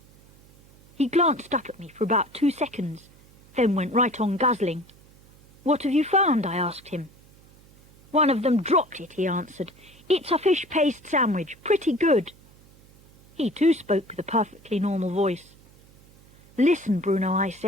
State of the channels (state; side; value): noise; right; hum, 26 dB below the sound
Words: He glanced up at me for about 2 seconds, then went right on guzzling. What have you found? I asked him. One of them dropped it, he answered. It's a fish paste sandwich, pretty good. He too spoke with a perfectly normal voice. Listen, Bruno, I